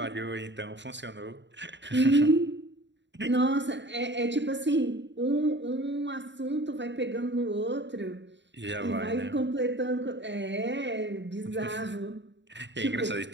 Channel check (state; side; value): late; left; 0.52 ms